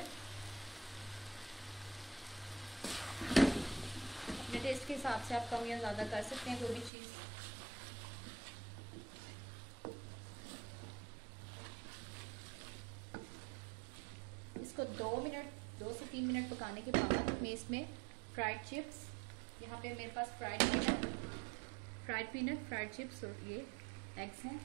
अपने टेस्ट के हिसाब से आप कम या ज़्यादा कर सकते हैं कोई भी चीज़। इसको 2 से 3 मिनट पकाने के बाद मैं इसमें फ्राइड चिप्स, यहाँ पे मेरे पास फ्राइड पीनट, फ्राइड चिप्स और ये एग्स हैं,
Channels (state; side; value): drops out; left; at 6.9 s